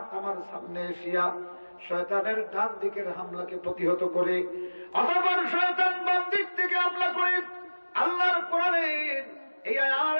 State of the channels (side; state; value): both; inverted; correlation -1.00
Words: আমার সামনে এসিয়া শয়তানের ডান দিকের হামলাকে প্রতিহত করে। অতঃপর শয়তান বাম দিক থেকে হামলা করে আল্লাহর কোরআনের এই আর